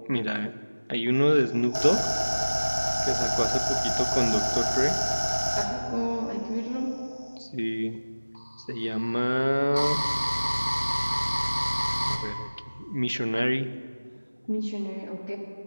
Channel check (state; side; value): inverted; both; correlation -1.00